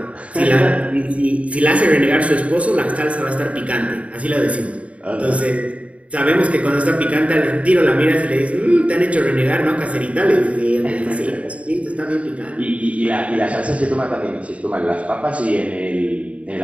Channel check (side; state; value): left; late; 0.065 ms